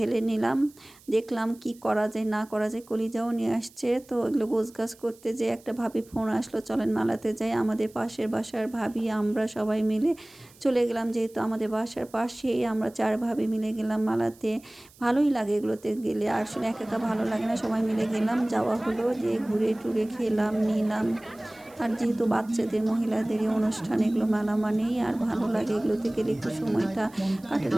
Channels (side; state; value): right; noise; hiss, 26 dB below the sound